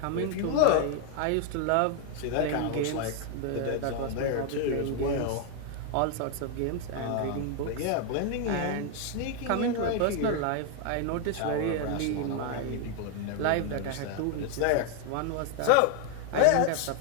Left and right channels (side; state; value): both; different; correlation 0.00